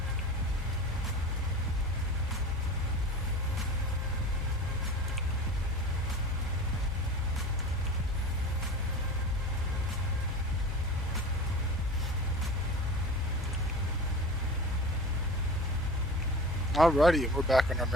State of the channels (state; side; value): normal; both; correlation 0.35